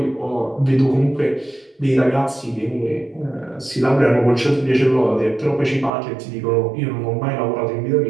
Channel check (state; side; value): drops out; left; at 6.0 s